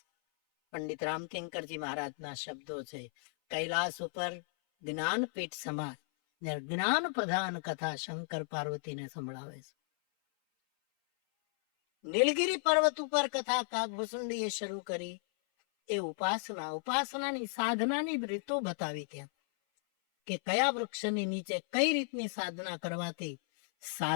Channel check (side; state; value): right; silent; 55 dB below the other